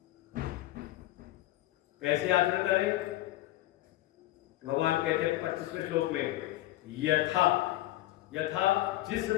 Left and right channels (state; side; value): quieter; right; 16.0 dB